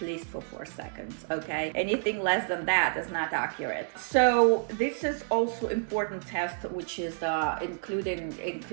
least for 4 seconds, okay? Anything less than that is not accurate. So this is also important test, which is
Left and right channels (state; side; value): silent; left; 57 dB below the other